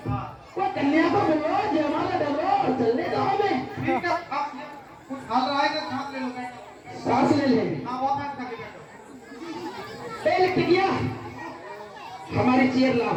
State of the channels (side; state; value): both; identical; correlation 1.00